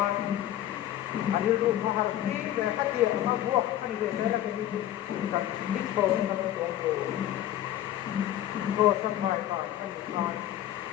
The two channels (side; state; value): right; quieter; 12.6 dB